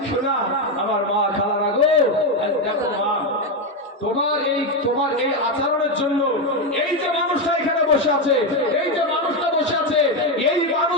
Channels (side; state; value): both; normal; correlation 0.08